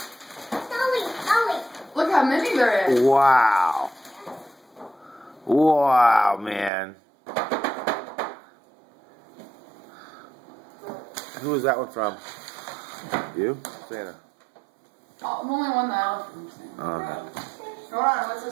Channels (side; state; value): left; drops out; at 6.7 s